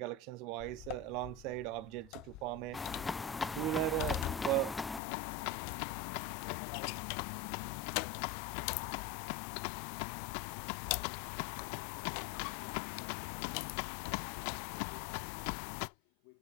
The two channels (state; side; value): drops out; right; at 5.0 s